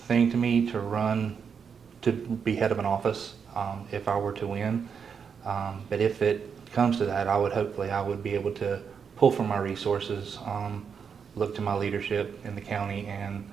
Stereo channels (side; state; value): left; quieter; 6.6 dB